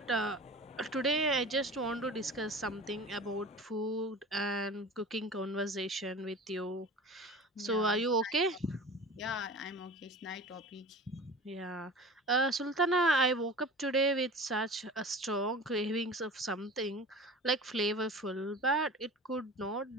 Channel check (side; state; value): both; normal; correlation 0.37